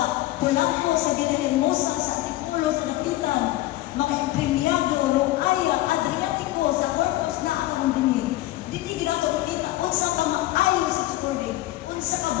Polanco, sa Villahermosa, sa Antipulo, sa Dapitan, mga empremyado, Rongaya, Adriatico, sa Corpus na akong dinig. Dini ginato kita, unsa ka maayo sa Supporting, unsa ka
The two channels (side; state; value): right; quieter; 16.9 dB